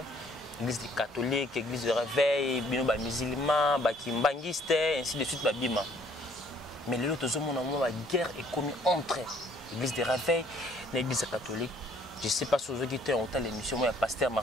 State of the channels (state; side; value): normal; both; correlation 0.62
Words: catholique, l'église de réveil, les musulmans, les kimbangistes, ainsi de suite. Mais les autres hommes, la guerre est commise entre l'église de réveil et l'église catholique. Je ne sais pas si vous avez été en temps l'émission, moi, Pasteur